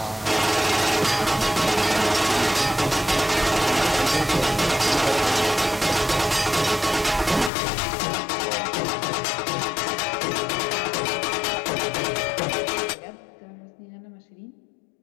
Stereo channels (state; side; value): drops out; right; at 7.5 s